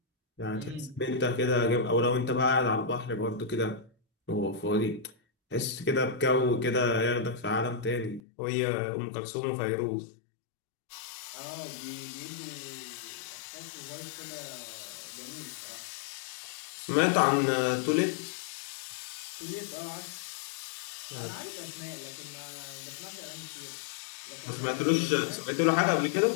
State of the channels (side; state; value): right; drops out; at 8.2 s